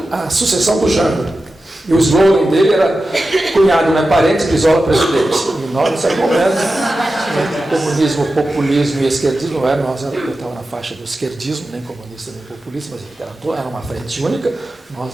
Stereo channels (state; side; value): normal; both; correlation 0.93